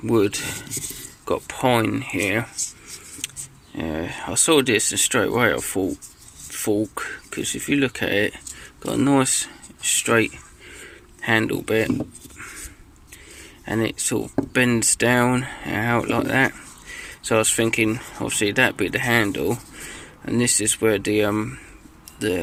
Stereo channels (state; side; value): identical; both; correlation 1.00